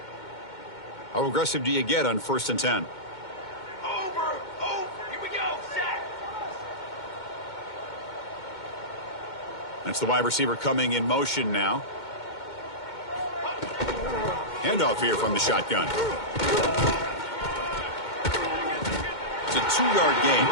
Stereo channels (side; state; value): right; late; 2.2 ms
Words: How aggressive do you get on 1st and 10? Here we go, set. That's the wide receiver coming in motion now. Handoff here from the shotgun. It's a 2-yard gain.